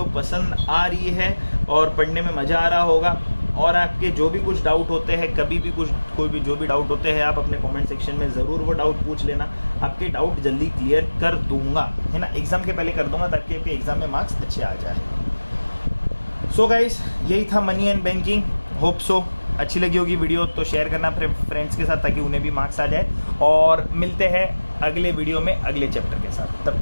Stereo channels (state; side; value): inverted; both; correlation -1.00